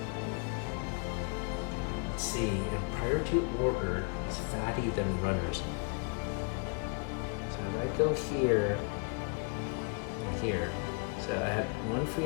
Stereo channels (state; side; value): quieter; right; 36.3 dB